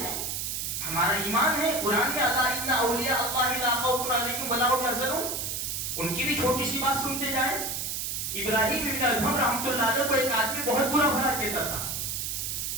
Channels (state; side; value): noise; right; hiss, 3 dB below the sound